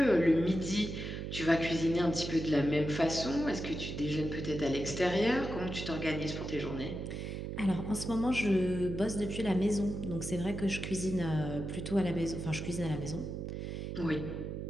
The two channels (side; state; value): right; noise; hum, 5 dB below the sound